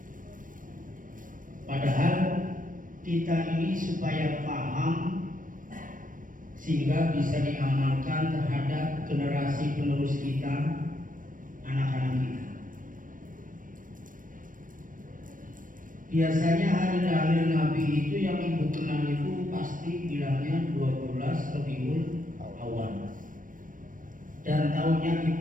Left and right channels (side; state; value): left; late; 0.39 ms